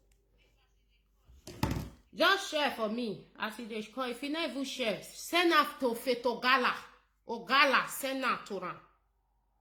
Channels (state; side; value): identical; both; correlation 1.00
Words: Just share for me. As they call, if you not even share, send out to Fetogala. Ogala, send out to them.